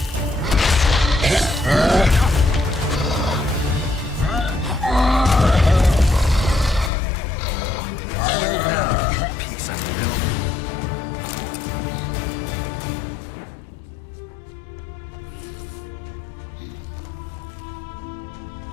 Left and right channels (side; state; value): right; drops out; at 6.9 s